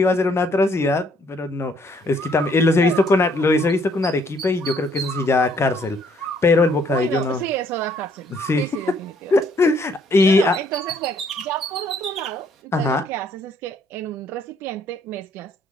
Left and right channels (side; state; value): both; normal; correlation 0.66